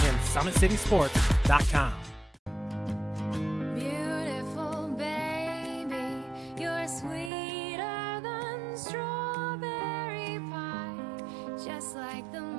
SummitCitySports.com. Beautiful baby, you're sweeter than strawberry pie. Just like the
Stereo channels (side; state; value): left; drops out; at 7.3 s